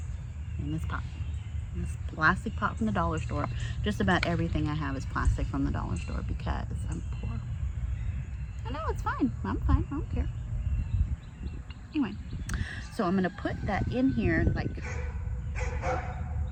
pot. This plastic pot from the dollar store. Just about everything I have is plastic from the dollar store because I'm poor. I know, it's fine. I'm fine. I don't care. Anyway, so I'm going to put that in here like...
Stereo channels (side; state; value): both; identical; correlation 1.00